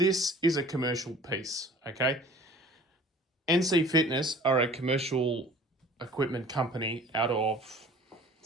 is a commercial piece, okay? NC Fitness are a commercial equipment company out of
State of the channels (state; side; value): normal; both; correlation 0.47